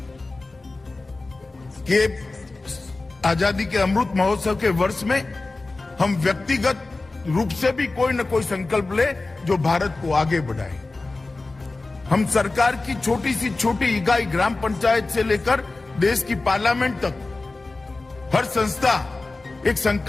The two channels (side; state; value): right; quieter; 3.3 dB